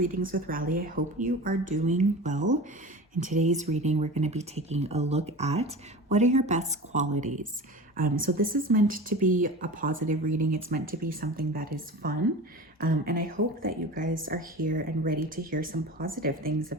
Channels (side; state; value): both; normal; correlation 0.33